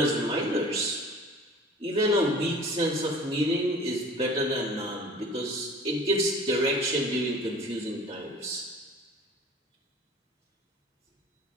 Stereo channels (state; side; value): normal; both; correlation 0.45